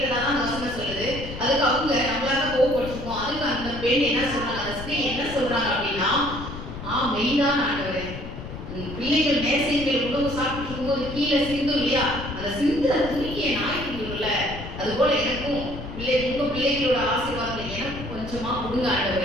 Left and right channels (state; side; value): noise; left; rumble, 10 dB below the sound